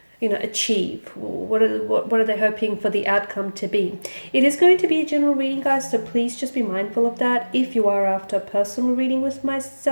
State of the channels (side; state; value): both; inverted; correlation -1.00